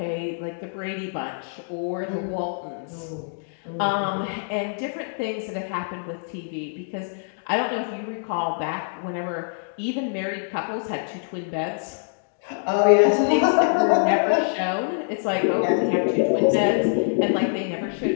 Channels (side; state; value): right; silent; digital silence